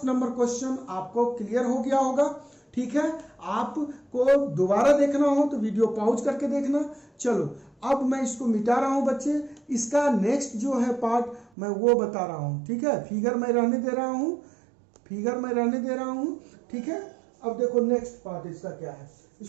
नंबर क्वेश्चन आपको क्लियर हो गया होगा, ठीक है। आपको दोबारा देखना हो तो वीडियो पॉज करके देखना। चलो अब मैं इसको मिटा रहा हूं बच्चे, इसका नेक्स्ट जो है पार्ट मैं वो बता रहा हूं, ठीक है। फिगर मैं रहने दे रहा हूं, फिगर मैं रहने दे रहा हूं, ठीक है। अब देखो नेक्स्ट पार्ट इसका क्या है,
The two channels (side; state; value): left; drops out; at 11.5 s